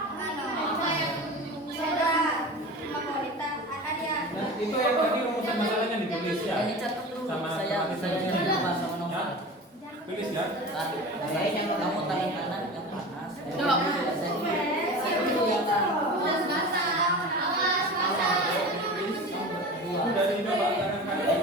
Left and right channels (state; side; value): normal; both; correlation 0.33